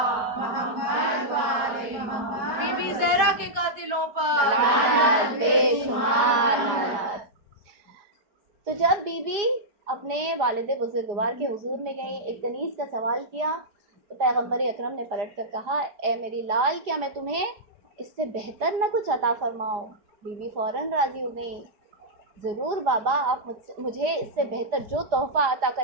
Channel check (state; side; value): late; left; 4.9 ms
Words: محمد وعلی محمد۔ بی بی زہرا کے قاتلوں پر لعنت، بے شمار لعنت۔ تو جب بی بی اپنے والد بزرگوار کے حضور میں گئی، ایک کنیز کا سوال کیا، تو پیغمبر اکرم نے پلٹ کر کہا اے میری لال، کیا میں تمہیں اس سے بہتر نہ کچھ عطا فرماؤں؟ بی بی فوراً راضی ہو گئی، ضرور بابا، آپ مجھے اس سے بہتر جو تحفہ عطا